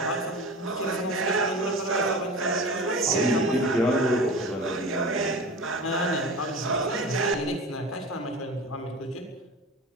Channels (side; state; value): both; normal; correlation 0.33